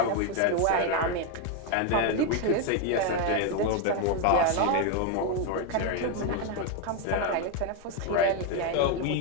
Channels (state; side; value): different; both; correlation 0.02